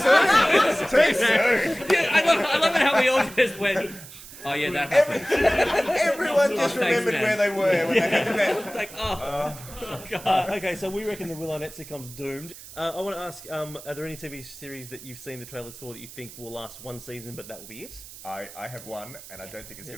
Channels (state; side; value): noise; right; hiss, 16 dB below the sound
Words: soon. Too soon. Yeah, I love it how we all just went. Oh yeah, that happened. Everyone just thanks, remembered man. where they were when they had met. It's like, oh, Okay, so we reckon the Will Arnett sitcom's doomed. I want to ask, are there any TV series that you've seen the trailers for that you think will last one season, but that will be it? I have one, and I don't think it's